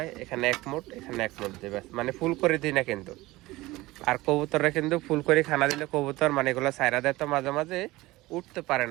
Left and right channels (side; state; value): left; quieter; 19.4 dB